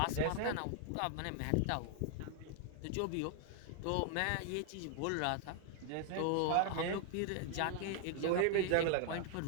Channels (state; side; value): different; both; correlation 0.00